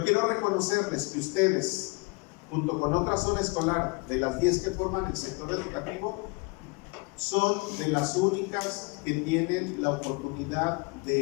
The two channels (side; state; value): right; quieter; 29.7 dB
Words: quiero reconocerles que ustedes, junto con otra zona escolar, de las 10 que forman el sector educativo, son de las únicas que tienen la oportunidad